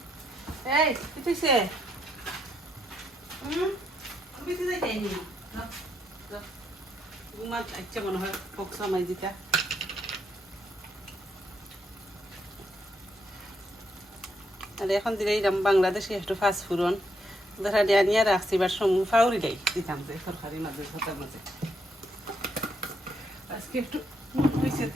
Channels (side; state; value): both; normal; correlation 0.77